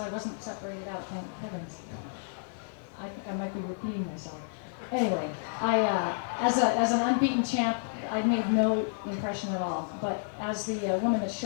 wasn't separated out, thank heavens. I think I might be repeating myself. Anyway, as an unbeaten champ, I made no impression at all. But as the woman that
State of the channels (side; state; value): right; silent; digital silence